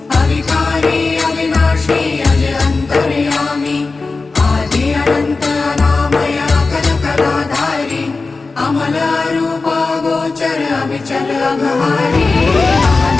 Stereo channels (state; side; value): quieter; right; 3.9 dB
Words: अविकारी अविनाशी अज अंतर्यामी आदि अनंत अनामय अकल कलाधारी अमल रूप गोचर अविचल अघहारी